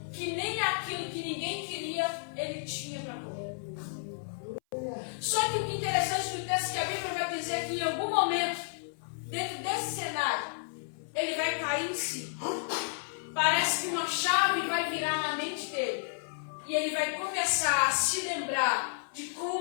que nem aquilo que ninguém queria, ele tinha para comer. Só que o que é interessante no texto é que a Bíblia vai dizer que em algum momento, dentro desse cenário, ele vai cair em si. Parece que uma chave vai virar na mente dele. E ele vai começar a se lembrar de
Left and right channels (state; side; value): silent; right; 57 dB below the other